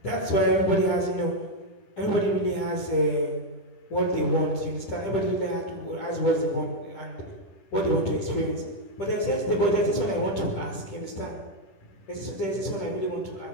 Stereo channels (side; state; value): right; late; 10 ms